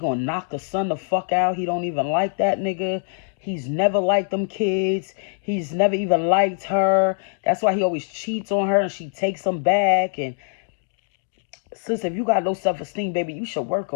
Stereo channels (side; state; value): right; silent; digital silence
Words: knock the son the fuck out. He don't even like that nigga. He's never liked them kids. He's never even liked her. That's why he always cheats on her and she takes him back. And sis, if you got low self-esteem, baby, you should work